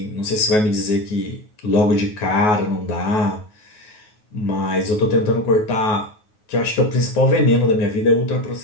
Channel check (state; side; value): late; right; 9.4 ms